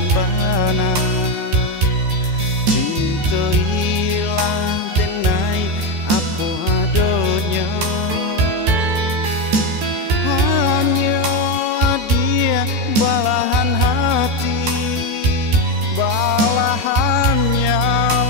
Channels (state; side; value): late; left; 14 ms